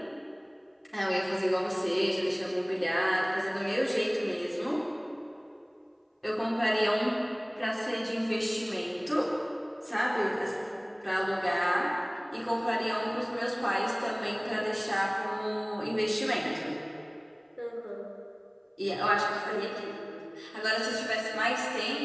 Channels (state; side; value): identical; both; correlation 1.00